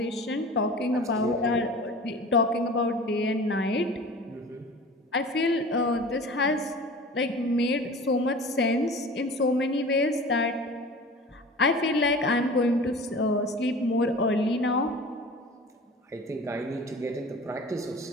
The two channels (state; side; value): normal; both; correlation 0.39